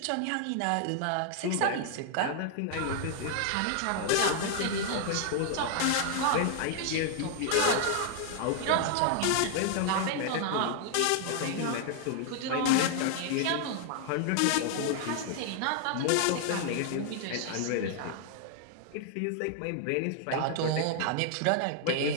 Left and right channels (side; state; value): both; different; correlation 0.00